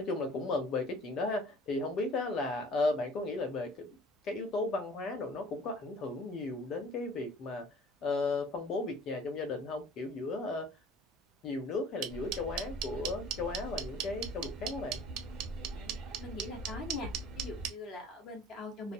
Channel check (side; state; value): both; normal; correlation 0.49